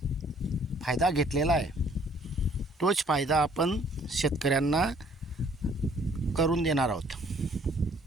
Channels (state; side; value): normal; both; correlation 0.60